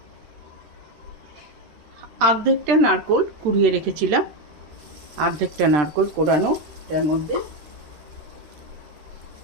অর্ধেকটা নারকোল কুড়িয়ে রেখেছিলাম, অর্ধেকটা নারকোল কোড়ানো তার মধ্যে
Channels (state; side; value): late; left; 13 ms